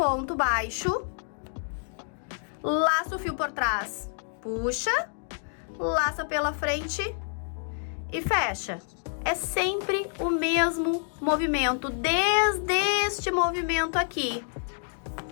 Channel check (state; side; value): silent; right; 55 dB below the other